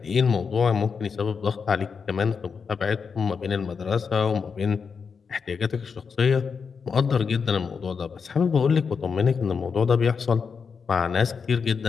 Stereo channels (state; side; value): quieter; right; 5.8 dB